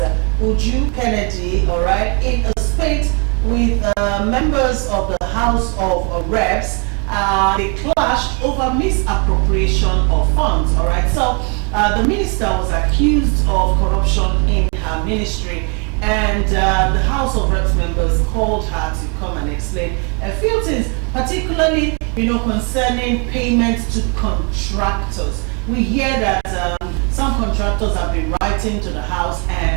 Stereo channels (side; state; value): left; quieter; 35.5 dB